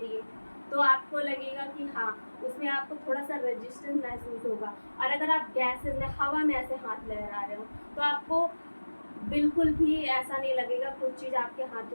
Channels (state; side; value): inverted; both; correlation -1.00